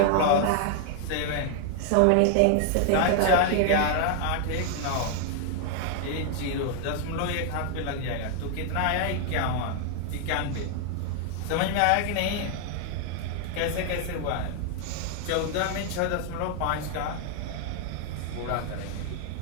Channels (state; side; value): different; both; correlation 0.00